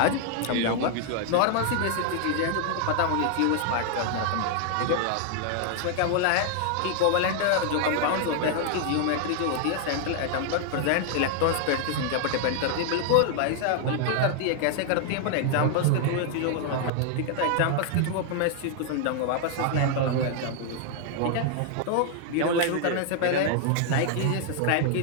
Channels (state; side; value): different; both; correlation 0.00